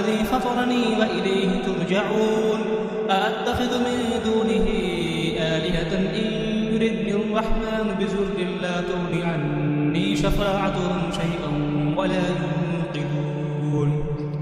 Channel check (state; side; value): identical; both; correlation 1.00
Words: فطرني وإليه ترجعون. أأتخذ من دونه آلهة إن يردني الرحمن بضر لا تغن عني شفاعتهم شيئا ولا ينقذون.